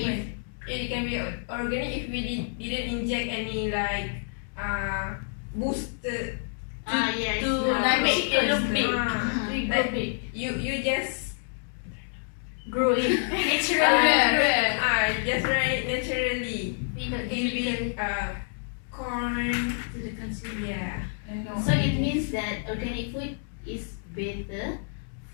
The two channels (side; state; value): right; silent; digital silence